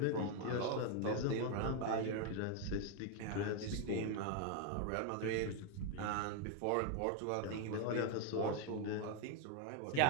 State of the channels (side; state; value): both; different; correlation 0.01